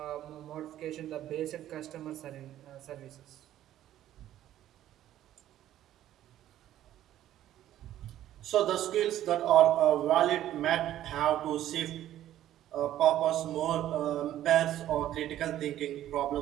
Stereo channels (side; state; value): left; quieter; 12.6 dB